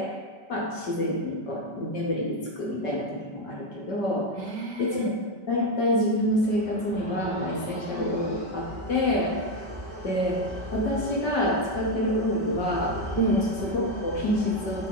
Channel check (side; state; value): right; late; 5.2 ms